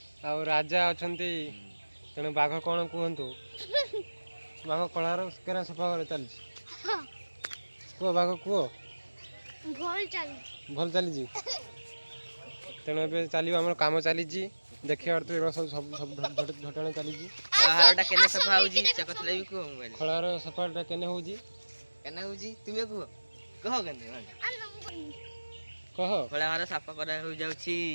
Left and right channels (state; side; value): inverted; both; correlation -1.00